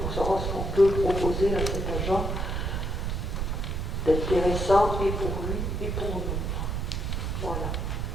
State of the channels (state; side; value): noise; right; rumble, 1 dB below the sound